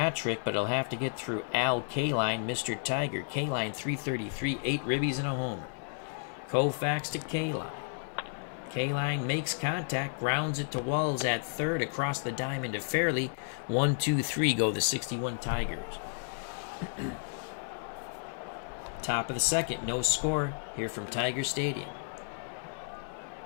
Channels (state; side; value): silent; right; 56 dB below the other